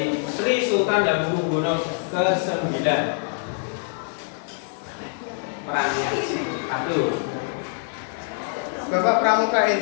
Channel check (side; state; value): right; silent; 62 dB below the other